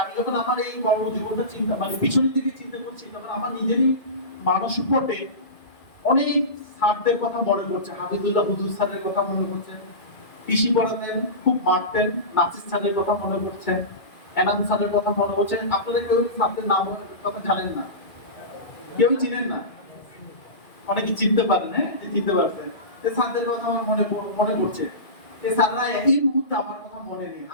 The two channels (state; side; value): late; right; 2.2 ms